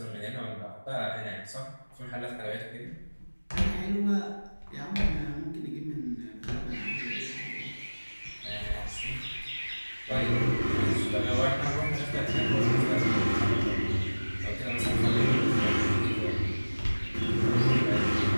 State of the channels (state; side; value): inverted; both; correlation -1.00